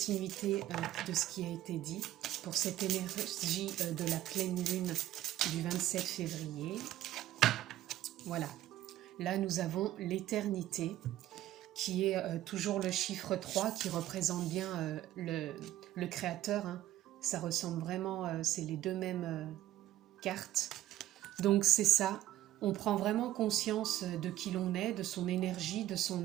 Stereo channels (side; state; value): left; quieter; 13.9 dB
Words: de ce qui a été dit, pour cette énergie de la pleine lune du 27 février. Voilà, là nous avons l'éternité, qui est toujours le chiffre 3, qui représente bien le créateur, Ça ressemble vraiment, c'est les deux mêmes cartes. Donc c'est ça, on prend vraiment conscience de qui l'on est, de son énergie, de